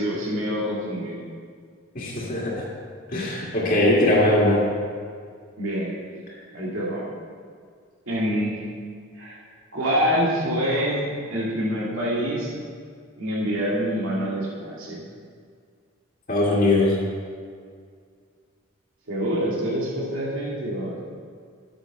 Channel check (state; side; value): normal; both; correlation 0.28